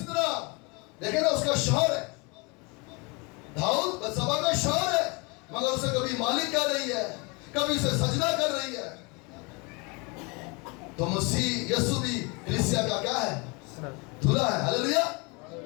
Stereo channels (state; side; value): quieter; right; 29.2 dB